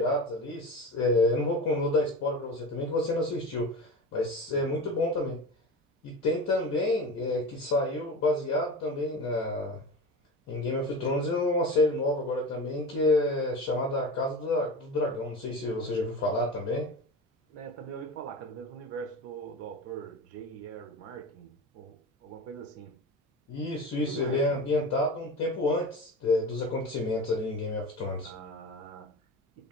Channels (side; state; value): both; normal; correlation 0.30